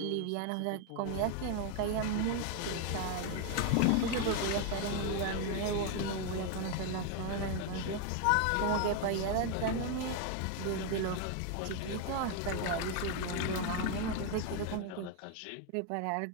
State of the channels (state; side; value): different; both; correlation 0.01